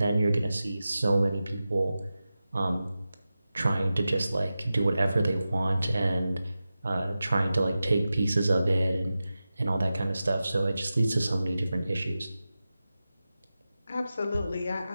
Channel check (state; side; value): inverted; both; correlation -0.94